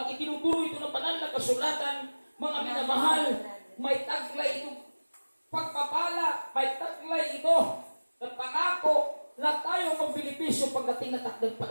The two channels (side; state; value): both; inverted; correlation -1.00